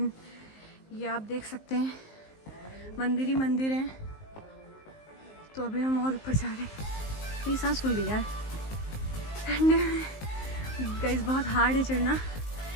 ये आप देख सकते हैं मंदिर ही मंदिर है। तो अभी हम और ऊपर जा रहे हैं। मेरी सांस फूल गई यार। एंड गाइस बहुत हार्ड है चढ़ना।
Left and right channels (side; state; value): right; late; 19 ms